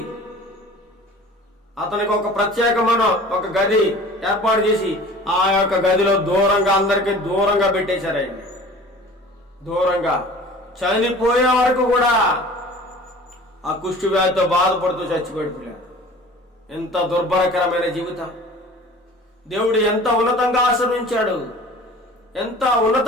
అతనికి ఒక ప్రత్యేకమైన ఒక గది ఏర్పాటు చేసి ఆ యొక్క గదిలో దూరంగా అందరికీ దూరంగా పెట్టేశారు. ఆయన దూరంగా చనిపోయే వరకు కూడా ఆ కుష్టు వ్యాధితో బాధపడుతూ చచ్చిపోయాడు. ఎంత దుర్భరకరమైన జీవితం! దేవుడు ఎంత ఉన్నతంగా ఆశీర్వించాడు, ఎంత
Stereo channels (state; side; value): normal; both; correlation 0.44